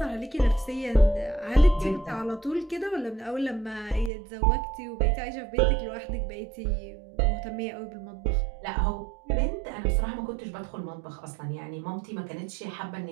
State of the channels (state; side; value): drops out; left; at 4.1 s